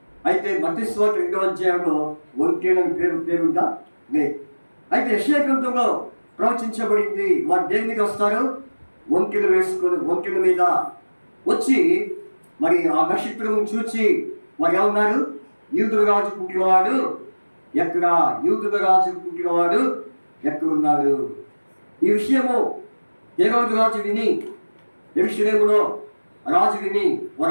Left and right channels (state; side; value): inverted; both; correlation -1.00